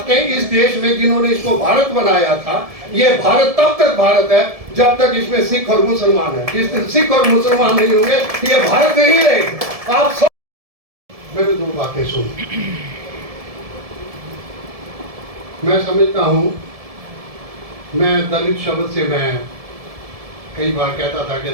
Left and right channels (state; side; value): late; left; 1.7 ms